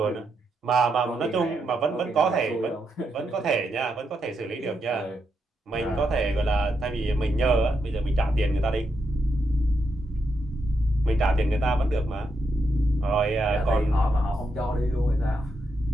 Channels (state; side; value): normal; both; correlation 0.82